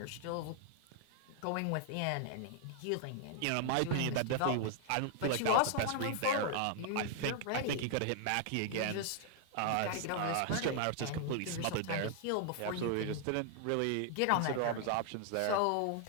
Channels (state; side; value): different; both; correlation 0.00